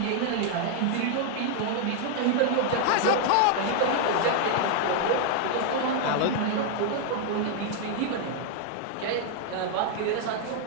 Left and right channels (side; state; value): both; different; correlation 0.00